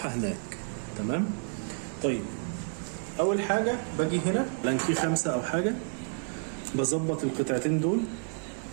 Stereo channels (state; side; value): silent; left; 55 dB below the other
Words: هناك. تمام. طيب اول حاجة باجي هنا لانكي 5 او حاجة، بظبط القطعتين دول